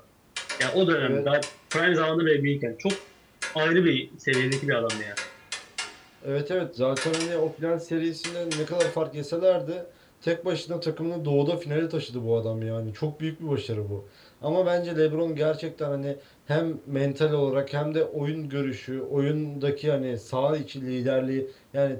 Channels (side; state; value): both; identical; correlation 1.00